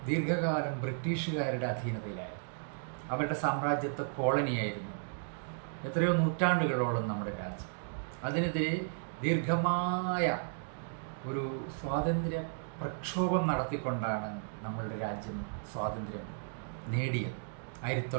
ദീർഘകാലം ബ്രിട്ടീഷുകാരുടെ അധീനതയിലായിരുന്നു. അവരുടെ സാമ്രാജ്യത്വ കോളനിയായിരുന്നു എത്രയോ നൂറ്റാണ്ടുകളോളം നമ്മുടെ രാജ്യം. അതിനെതിരെ ദീർഘമായ ഒരു സ്വാതന്ത്ര്യ പ്രക്ഷോഭം നടത്തിക്കൊണ്ടാണ് നമ്മളുടെ രാജ്യം സ്വാതന്ത്ര്യം നേടിയത്.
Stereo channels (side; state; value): left; silent; digital silence